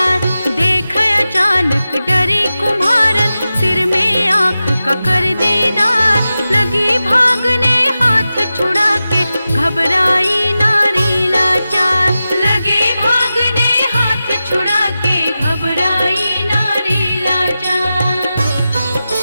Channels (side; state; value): both; inverted; correlation -0.93